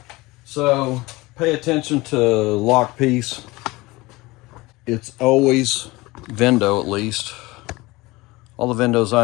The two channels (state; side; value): quieter; right; 21.4 dB